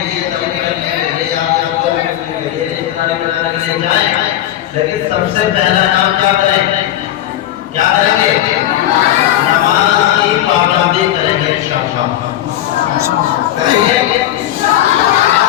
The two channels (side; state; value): right; quieter; 12.8 dB